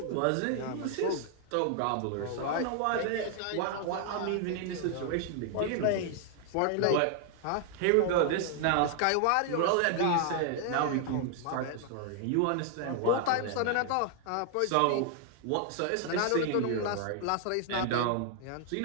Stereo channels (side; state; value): both; different; correlation 0.00